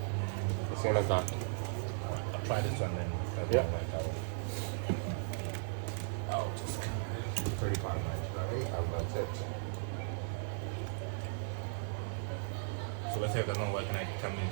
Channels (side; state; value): left; silent; digital silence